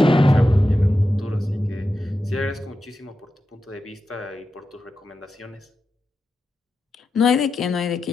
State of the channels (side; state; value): both; normal; correlation 0.90